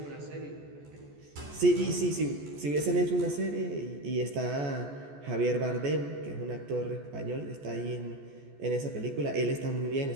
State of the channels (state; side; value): late; left; 14 ms